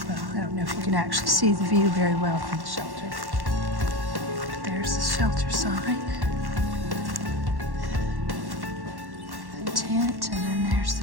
Well, I don't know if you can actually see the view very well from the shelter. But there's the shelter sign. The tent, and then there's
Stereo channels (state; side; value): late; left; 1.1 ms